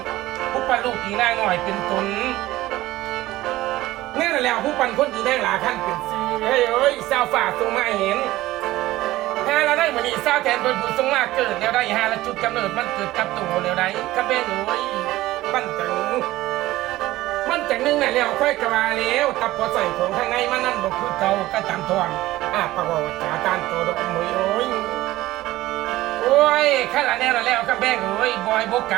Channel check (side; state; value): left; quieter; 16.7 dB